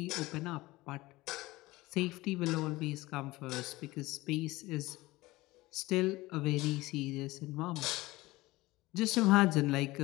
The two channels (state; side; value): quieter; right; 19.7 dB